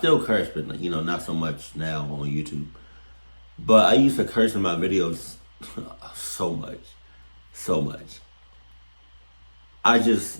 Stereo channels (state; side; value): inverted; both; correlation -1.00